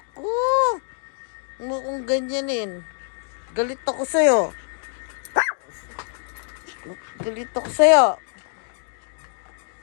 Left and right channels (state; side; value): silent; right; 56 dB below the other